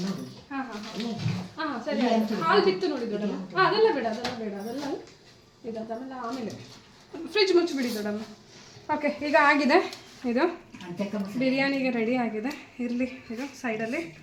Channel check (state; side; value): identical; both; correlation 1.00